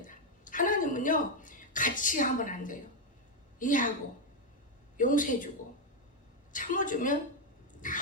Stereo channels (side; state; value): both; normal; correlation 0.03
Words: 하나님은요 같이 하면 안 돼요. 이해하고 용서해주고 참아주면